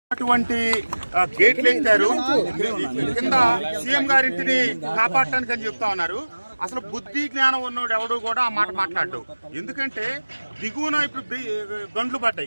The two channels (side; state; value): both; inverted; correlation -1.00